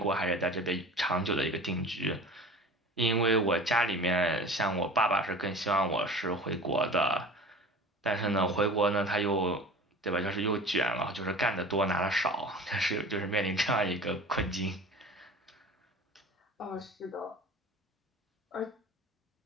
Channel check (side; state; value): both; normal; correlation 0.39